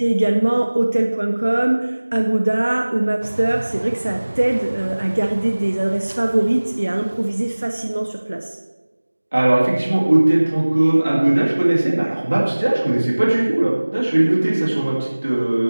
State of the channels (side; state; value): both; inverted; correlation -1.00